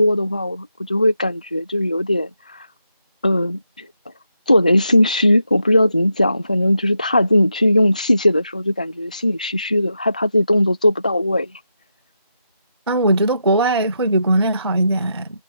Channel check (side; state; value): both; inverted; correlation -0.84